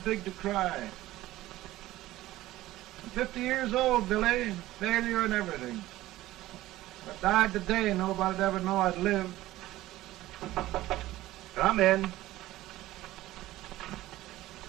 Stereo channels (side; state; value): left; quieter; 16.2 dB